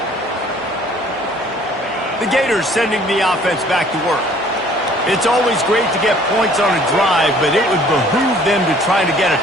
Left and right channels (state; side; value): normal; both; correlation 0.56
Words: The Gators sending the offense back to work. It's always great to get points on a drive, but it would behoove them to try to get a